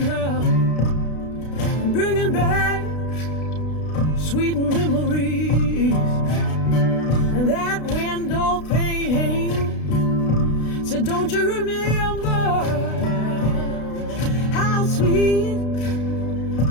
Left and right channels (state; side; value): late; right; 32 ms